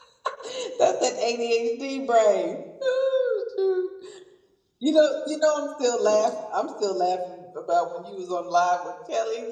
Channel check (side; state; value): both; identical; correlation 1.00